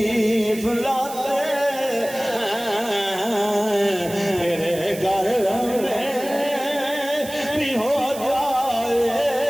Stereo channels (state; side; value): noise; right; hiss, 13 dB below the sound